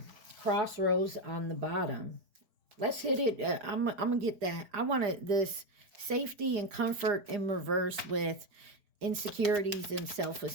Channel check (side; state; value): left; late; 4.4 ms